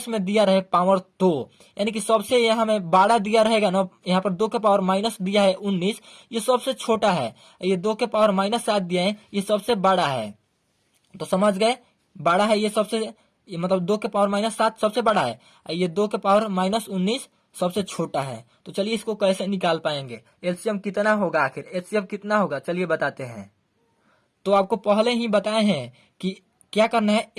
में दिया रहे पावर तो, यानी कि सबसे यहाँ में बड़ा दिया रहेगा ना, यहाँ पर 2 के पावर माइनस दिया है 19, ये सबसे छोटा है। ये 2 के पावर माइनस 7 दिया है, ये सबसे बड़ा है। तो समझ गए, बड़ा है ये सबसे, ये मतलब 2 के पावर माइनस 7 सबसे बड़ा है, ये 2 के पावर माइनस 19 सबसे छोटा है। तो चलिए इसको कैसे निकाल पाएंगे, एलसीएम कितना होगा, आखिर एचसीएफ कितना होगा, चलिए बताते हैं। तो आपको पहले ही बताए हैं कि क्या करना है,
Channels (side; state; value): both; identical; correlation 1.00